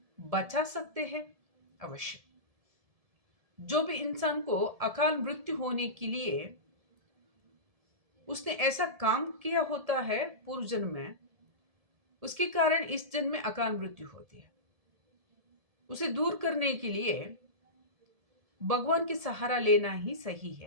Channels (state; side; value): late; left; 1.7 ms